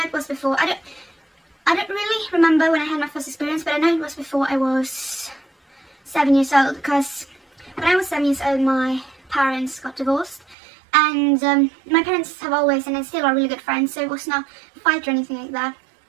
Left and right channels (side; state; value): left; drops out; at 10.6 s